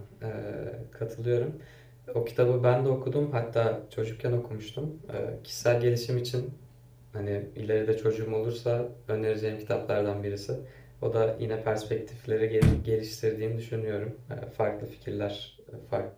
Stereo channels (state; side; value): identical; both; correlation 1.00